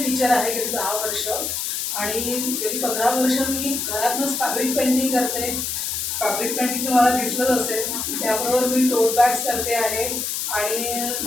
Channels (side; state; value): left; noise; hiss, 2 dB below the sound